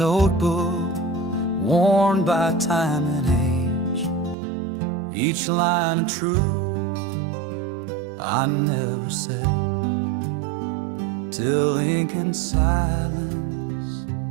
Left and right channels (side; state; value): left; drops out; at 4.4 s